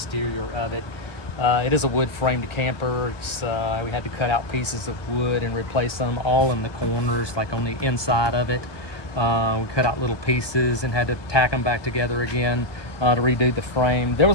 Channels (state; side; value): late; right; 1.2 ms